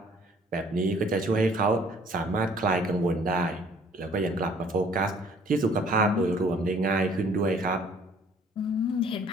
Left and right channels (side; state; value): both; normal; correlation 0.56